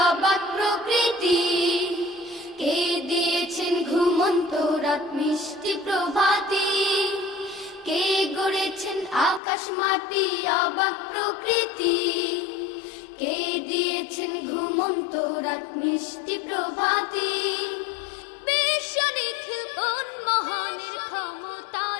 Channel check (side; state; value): right; drops out; at 9.4 s